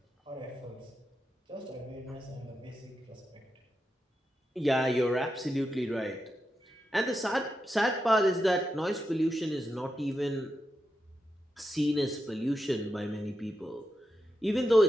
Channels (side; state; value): both; normal; correlation 0.87